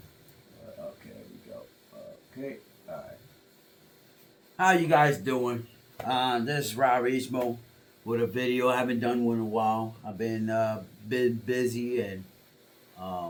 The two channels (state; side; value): identical; both; correlation 1.00